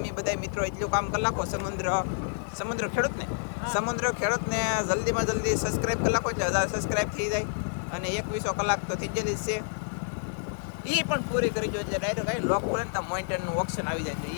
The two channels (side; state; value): right; silent; 59 dB below the other